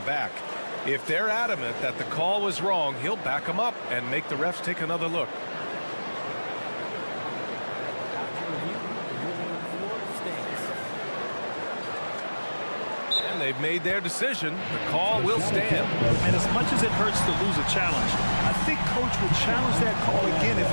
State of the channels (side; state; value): both; inverted; correlation -1.00